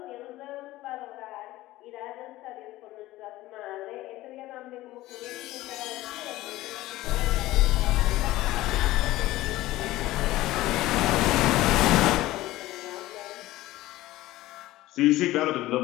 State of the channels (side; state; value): right; quieter; 17.0 dB